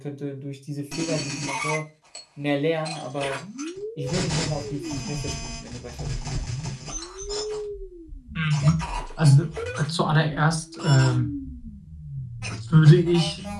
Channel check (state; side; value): identical; both; correlation 1.00